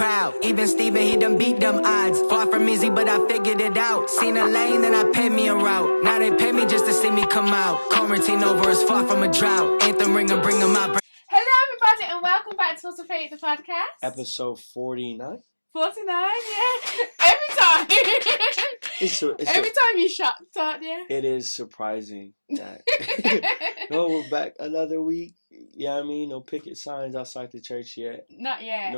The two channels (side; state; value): both; inverted; correlation -1.00